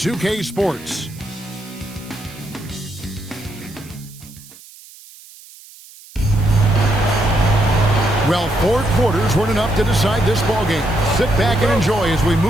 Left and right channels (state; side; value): noise; right; hiss, 21 dB below the sound